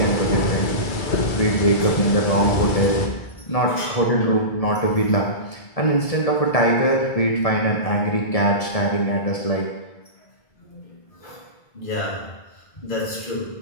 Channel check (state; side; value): late; right; 1.7 ms